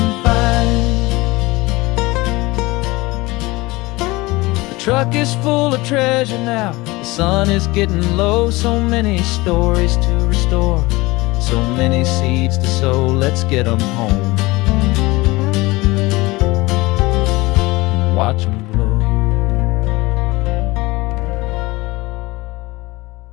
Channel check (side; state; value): right; quieter; 21.7 dB